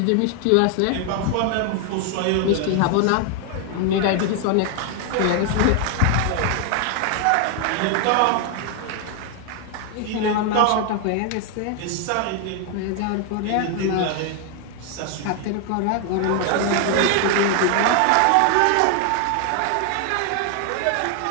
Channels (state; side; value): different; both; correlation 0.00